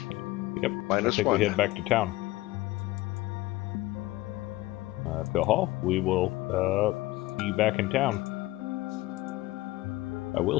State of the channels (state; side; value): quieter; right; 18.3 dB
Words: Yep. -1. I think we head back to town. Phil Hall, we will see you back in town. I will